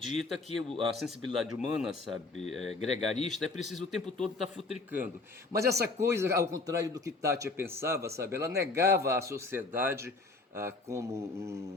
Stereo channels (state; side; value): quieter; right; 3.6 dB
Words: que a sensibilidade humana, sabe, gregarista, é preciso o tempo todo estar futricando. Mas essa coisa, ao contrário do que Tati pensava, sabe, ela negava a sociedade